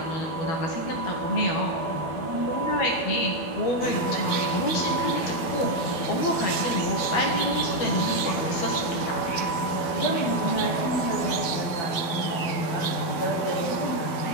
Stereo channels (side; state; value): right; late; 12 ms